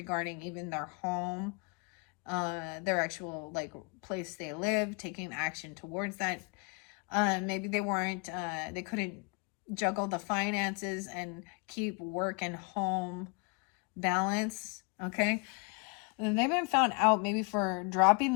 even their home, their actual like place they live, taking action towards that. Maybe they weren't, they couldn't juggle the finances and keep work and home balance. Okay. And they've been found out maybe for dropping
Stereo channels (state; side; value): quieter; right; 33.6 dB